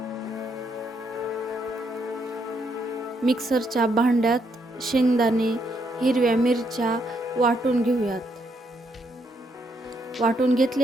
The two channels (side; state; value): both; normal; correlation 0.75